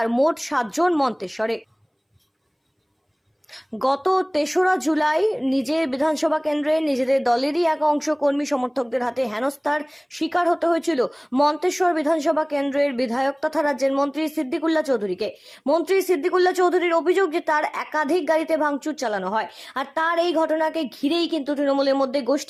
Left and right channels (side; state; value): both; identical; correlation 1.00